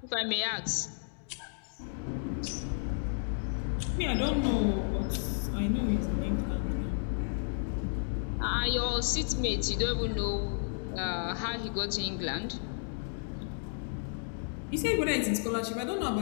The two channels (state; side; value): silent; right; digital silence